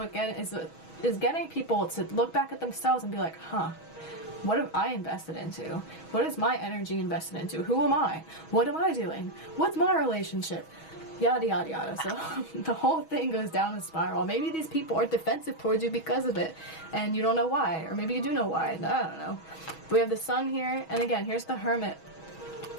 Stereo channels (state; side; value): late; right; 6.2 ms